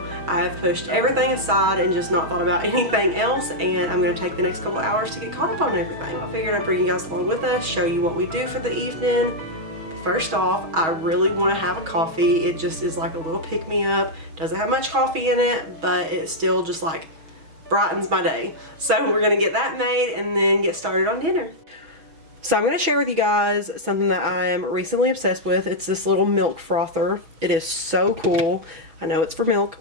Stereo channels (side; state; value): left; late; 6.2 ms